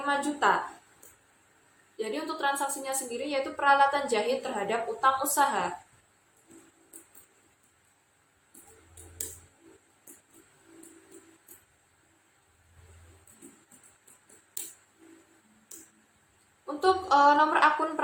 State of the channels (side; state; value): both; identical; correlation 1.00